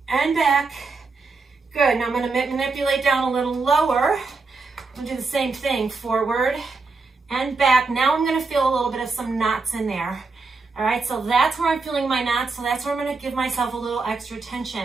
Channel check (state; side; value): quieter; left; 4.1 dB